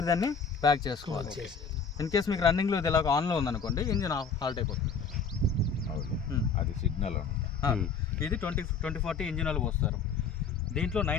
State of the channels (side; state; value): right; quieter; 5.4 dB